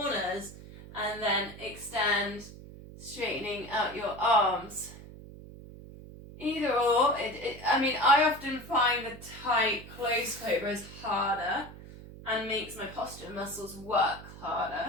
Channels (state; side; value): noise; right; hum, 16 dB below the sound